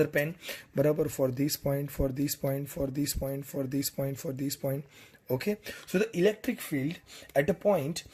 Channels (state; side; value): identical; both; correlation 1.00